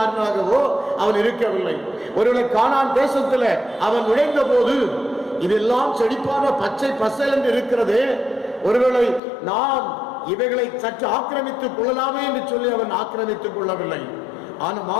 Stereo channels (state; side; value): drops out; right; at 9.2 s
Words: அவன் இருக்கவில்லை. ஒருவேளை கானான் தேசத்துல அவன் நுழைந்த போது இதெல்லாம் செழிப்பான பச்சை பசல் என்று இருக்கிறதே, ஒருவேளை நாம் இவைகளை சற்று ஆக்கிரமித்துக் கொள்ளலாமே என்று சொல்லி அவன் ஆக்கிரமித்துக் கொள்ளவில்லை. ஆனால்